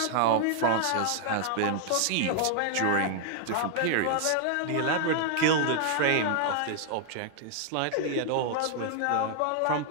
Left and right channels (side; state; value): both; different; correlation 0.00